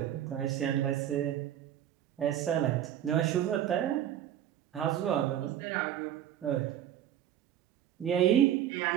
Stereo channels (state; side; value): quieter; left; 11.1 dB